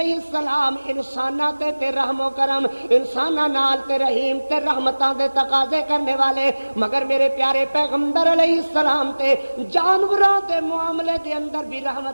السلام انساناں تے رحم و کرم، انساناں نال تے رحیم تے رحمتاں دے تقاضے کرنے والے، مگر میرے پیارے پیغمبر علیہ السلام تے جانوراں دے معاملے دے اندر بھی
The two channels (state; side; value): inverted; both; correlation -1.00